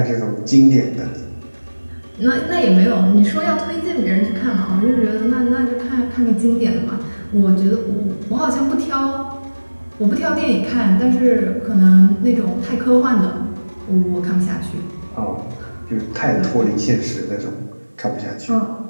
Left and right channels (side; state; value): both; inverted; correlation -1.00